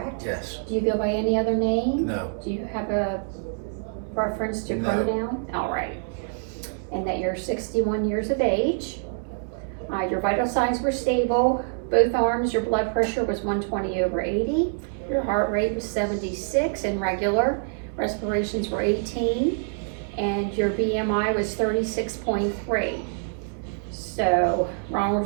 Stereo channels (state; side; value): silent; left; digital silence